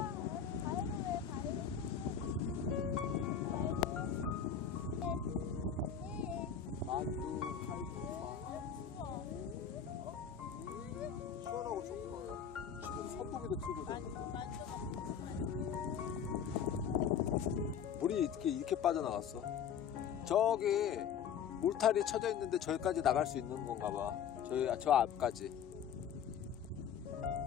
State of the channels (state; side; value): quieter; right; 7.9 dB